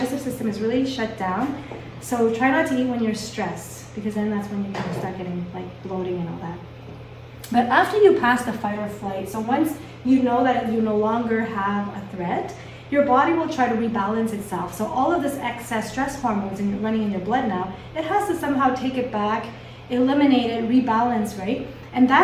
system is really shut down. So try not to eat when you're stressed, because then that's when you kind of start getting like bloating and all that. But after you pass the fight or flight, so once you know that you no longer have a threat, your body will try to rebalance itself. So all of this excess stress hormones running in your blood now, it has to somehow take it back, eliminate it, rebalance, right? And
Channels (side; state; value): both; identical; correlation 1.00